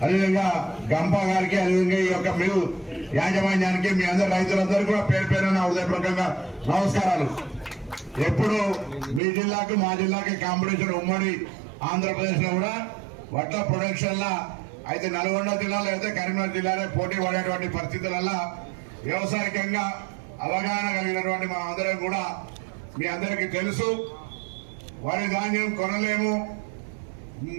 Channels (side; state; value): left; drops out; at 9.2 s